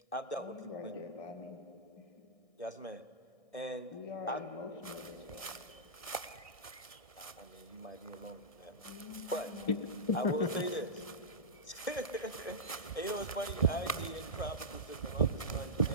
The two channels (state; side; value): late; right; 1.6 ms